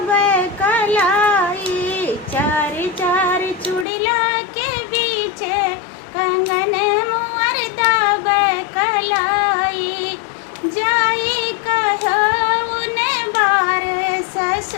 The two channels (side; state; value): right; drops out; at 3.9 s